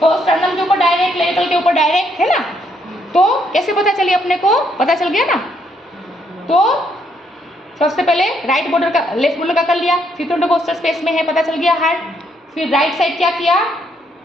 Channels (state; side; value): normal; both; correlation 0.72